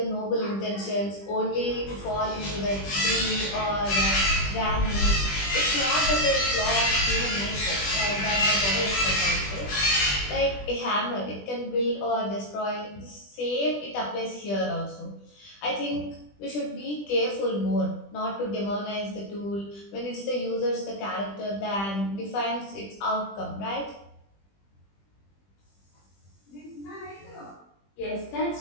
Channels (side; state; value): right; late; 20 ms